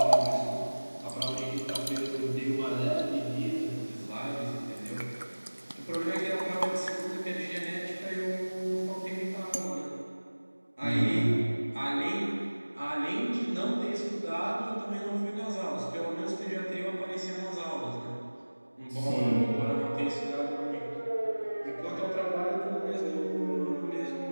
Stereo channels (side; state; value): both; inverted; correlation -1.00